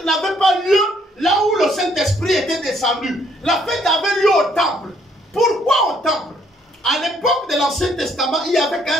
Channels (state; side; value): normal; both; correlation 0.67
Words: n'avait pas lieu là où le Saint-Esprit était descendu. La fête avait lieu au temple. Pourquoi au temple? À l'époque de l'Ancien Testament, il n'y avait